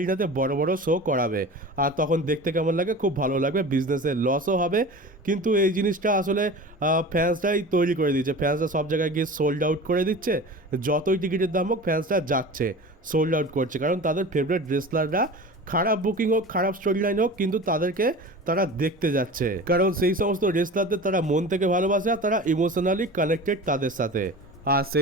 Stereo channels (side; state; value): both; normal; correlation 0.35